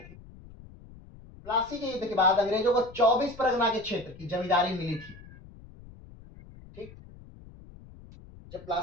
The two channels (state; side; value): noise; left; rumble, 20 dB below the sound